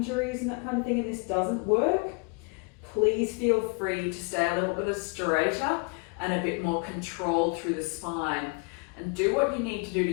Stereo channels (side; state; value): right; quieter; 32.1 dB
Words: and that kind of thing and this doesn't work, please feel free to stay a little bit straighter and a bit more controlled through the spine. And do what you need to do to